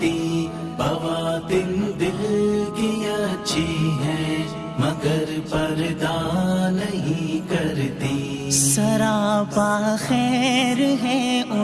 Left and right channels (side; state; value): both; identical; correlation 1.00